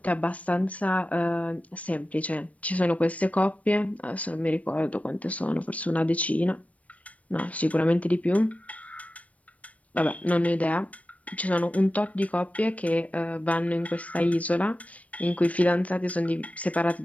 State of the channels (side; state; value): right; late; 0.067 ms